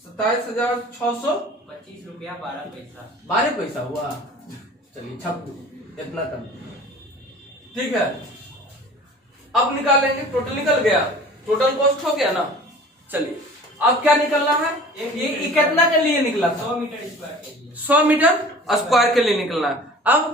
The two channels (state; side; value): normal; both; correlation 0.44